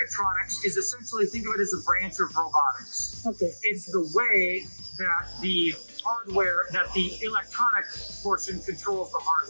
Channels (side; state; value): both; inverted; correlation -1.00